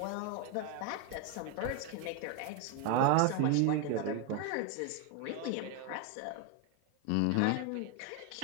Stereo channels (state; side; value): different; both; correlation 0.01